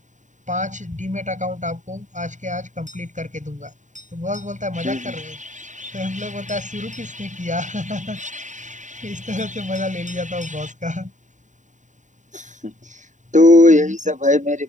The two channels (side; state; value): left; late; 0.36 ms